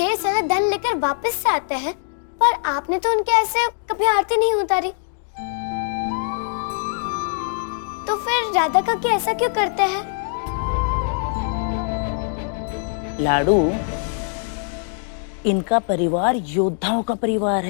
सारा धन लेकर वापस से आते हैं, पर आपने तो उनके ऐसे कभी आरती नहीं उतारी। तो फिर राधा काकी ऐसा क्यों करते हैं? लाडू, इनका परिवार योद्धाओं का परिवार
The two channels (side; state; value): right; silent; digital silence